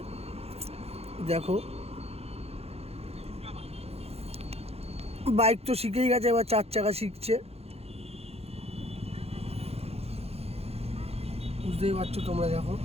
দেখো। বাইক তো শিখেই গেছে, এবার 4 চাকা শিখছে, বুঝতেই পারছো তোমরা। দেখো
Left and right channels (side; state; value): left; late; 0.29 ms